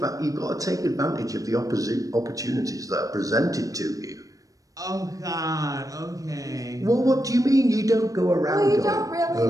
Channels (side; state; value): left; late; 0.16 ms